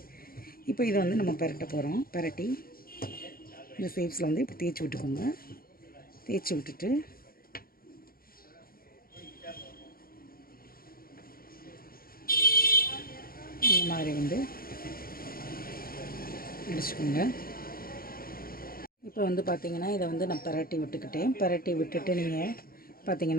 இப்போ இதை வந்து நம்ம பரட்ட போகிறோம். பரட்டி இந்த ஷேப்ஸில் வந்து இப்போ தேய்ச்சி விட்டுக்கோங்க. தேய்ச்சி விட்டுட்டு இந்த மாதிரி வந்து அடிச்சுக்கோங்க. இப்போ வந்து பார்த்திங்கன்னா இதை வந்து நான் பரட்டி விட்டுட்டு நீங்கள்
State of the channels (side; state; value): right; late; 0.43 ms